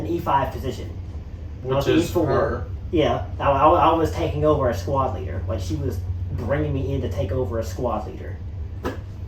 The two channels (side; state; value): both; identical; correlation 1.00